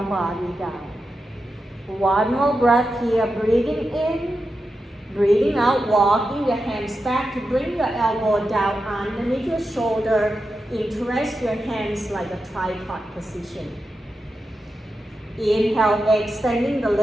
body down. One more breath here, breathing in, breathing out, walking your hands back to bring your elbow down underneath your shoulder. Interest your hands like a tripod position. Inhale, extending the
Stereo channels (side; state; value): both; normal; correlation 0.89